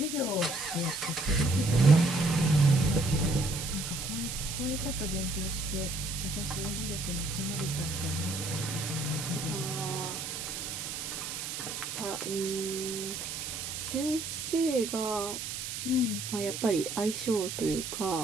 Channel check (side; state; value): right; noise; hiss, 5 dB below the sound